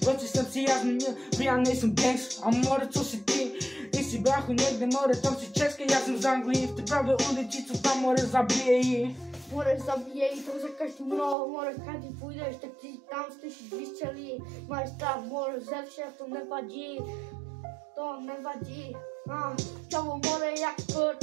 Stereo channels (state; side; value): drops out; left; at 11.4 s